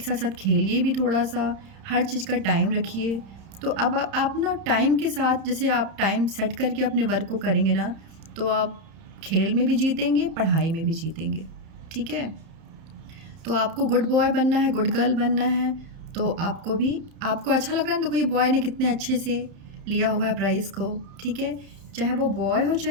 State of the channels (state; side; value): late; left; 31 ms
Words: साथ साथ खेलिए भी थोड़ा सा, हर चीज़ का टाइम रखिए। तो अब आप ना टाइम के साथ, जैसे आप टाइम सेट करके अपने वर्क को करेंगे ना, तो आप खेल में भी जीतेंगे, पढ़ाई में भी जीतेंगे, ठीक है। तो आपको गुड बॉय बनना है, गुड गर्ल बनना है, तो आपको अच्छा लग रहा है ना, देखो ये बॉय ने कितने अच्छे से लिया हुआ है प्राइज़ को, ठीक है। चाहे वो बॉय हो